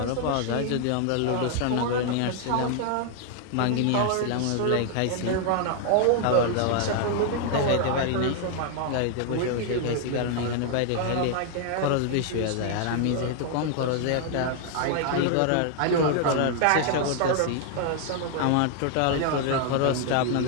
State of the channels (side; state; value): both; different; correlation 0.00